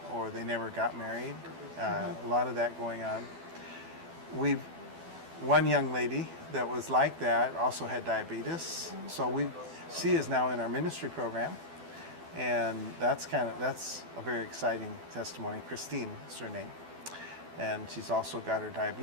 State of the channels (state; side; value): late; left; 12 ms